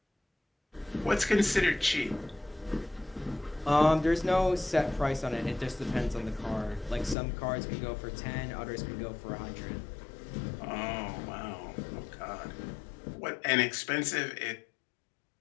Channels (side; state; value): right; drops out; at 7.2 s